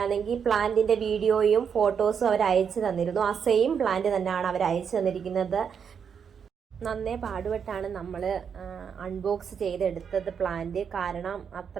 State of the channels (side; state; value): left; quieter; 7.1 dB